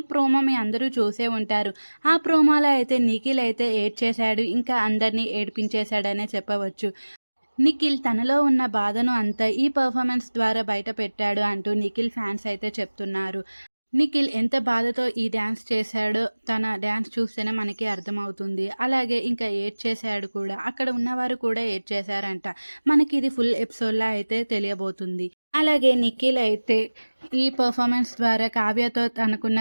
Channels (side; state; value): both; inverted; correlation -1.00